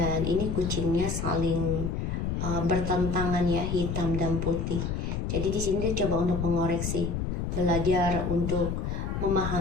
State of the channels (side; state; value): left; noise; rumble, 2 dB below the sound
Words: ini kucingnya saling bertentangan ya, hitam dan putih. Jadi di sini dia coba untuk mengoreksi, belajar untuk